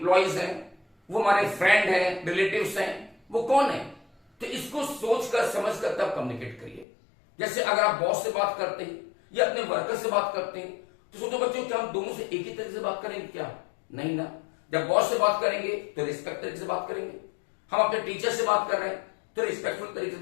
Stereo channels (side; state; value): right; drops out; at 6.9 s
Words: हैं, वो हमारे फ्रेंड हैं, रिलेटिव्स हैं, वो कौन है। तो इसको सोचकर समझकर तब कम्युनिकेट करिए। जैसे अगर आप बॉस से बात करते हैं या अपने वर्कर से बात करते हैं तो सोचो बच्चों क्या हम दोनों से एक ही तरीके से बात करेंगे क्या? नहीं ना। जब बॉस से बात करेंगे तो रिस्पेक्ट तरीके से बात करेंगे, हम अपने टीचर से बात कर रहे हैं तो रिस्पेक्टफुल तरीके से